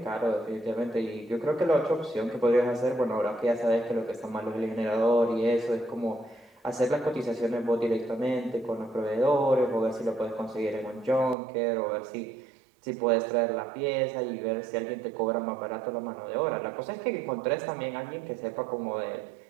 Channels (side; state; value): left; drops out; at 11.4 s